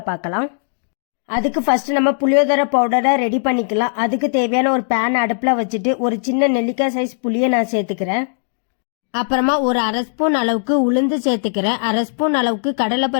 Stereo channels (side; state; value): right; silent; digital silence